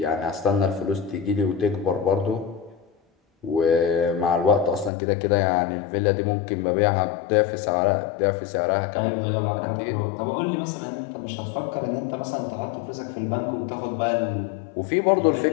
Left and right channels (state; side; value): drops out; right; at 4.9 s